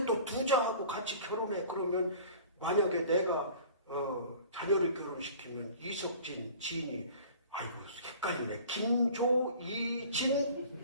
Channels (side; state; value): both; inverted; correlation -0.45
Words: 또 두 자하고 같이 결혼해. 그러면 만약에 내가 자녀를 결혼시키면 이석진, 진이, 아이고 헷갈리네. 김조,